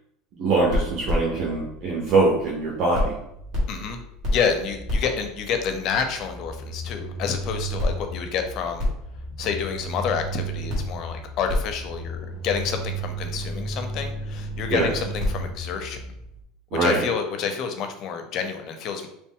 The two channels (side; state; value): both; normal; correlation 0.44